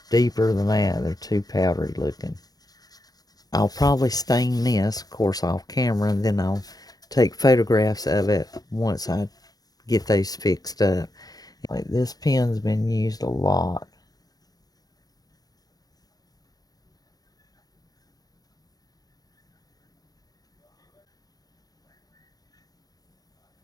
deeper than that. They're too powdery looking. I'll probably stain this, of course, off camera, and then I'll take photographs of it once I get those fixed up. Like, this pen's been used a lot.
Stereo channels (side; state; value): right; late; 0.19 ms